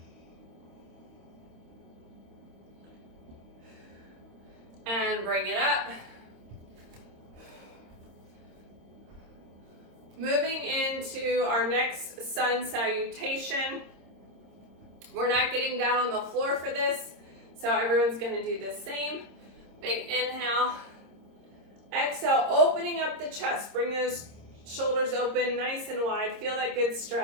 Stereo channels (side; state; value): left; late; 26 ms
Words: And bring it up. Moving into our next sun salutation. We're not getting down on the floor for this, so everyone's going to do the same. Big inhale. Exhale, opening up the chest. Bring those shoulders open nice and wide. Feel that good